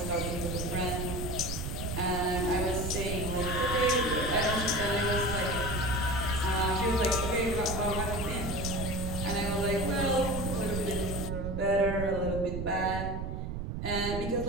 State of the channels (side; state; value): right; noise; rumble, 4 dB below the sound